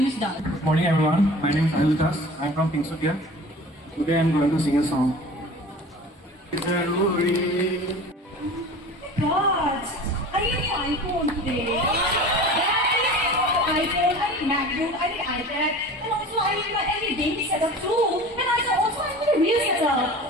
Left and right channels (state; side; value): normal; both; correlation 0.39